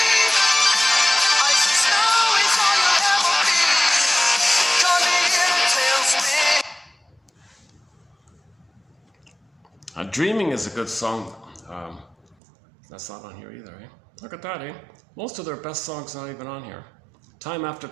Dreaming is a good song. That's not on here either, eh? Look at that, eh? Most of their best songs not even on here. Time After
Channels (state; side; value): drops out; left; at 12.4 s